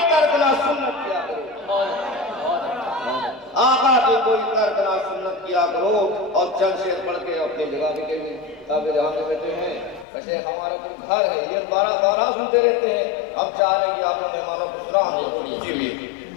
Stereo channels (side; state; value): right; drops out; at 10.1 s